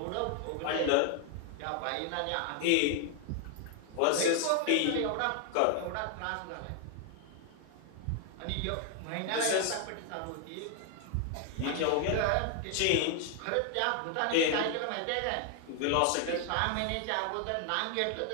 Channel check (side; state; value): both; different; correlation 0.00